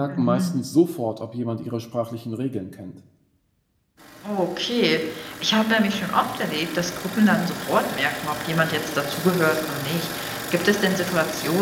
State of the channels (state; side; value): identical; both; correlation 1.00